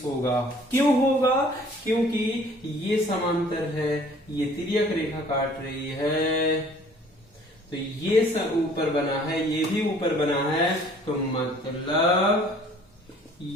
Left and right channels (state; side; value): normal; both; correlation 0.54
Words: होगा। क्यों होगा, क्योंकि ये समांतर है, ये तिर्यक रेखा काट रही है, तो ये सब ऊपर बना है, ये भी ऊपर बना है, तो मतलब